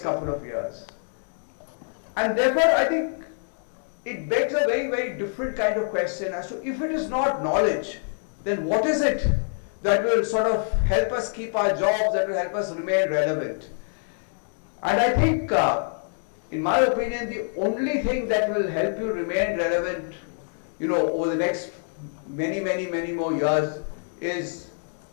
couple of years. And therefore I think it begs a very, very different kind of question as to, if it is not knowledge, then what is it that will sort of help us keep our jobs, that will help us remain relevant? And I think, in my opinion, the only thing that will help you remain relevant, over the next many more years is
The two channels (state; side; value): silent; right; 61 dB below the other